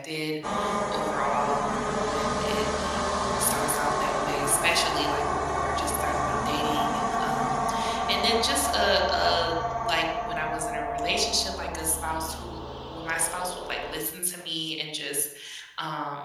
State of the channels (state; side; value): identical; both; correlation 1.00